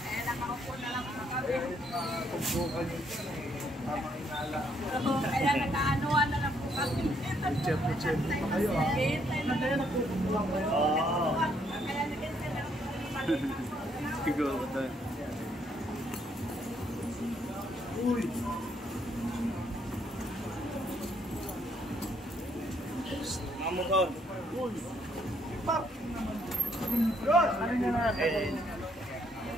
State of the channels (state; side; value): normal; both; correlation 0.71